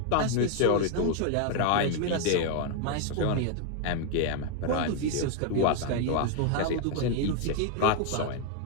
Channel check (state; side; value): different; both; correlation 0.00